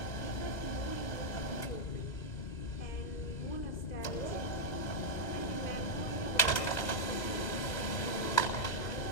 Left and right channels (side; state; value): right; late; 2.0 ms